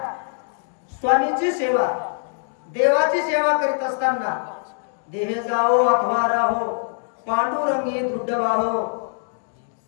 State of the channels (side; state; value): right; silent; digital silence